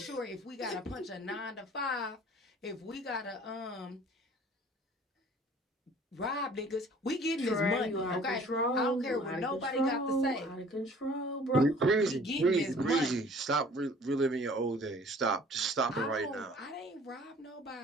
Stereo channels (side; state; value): both; normal; correlation 0.51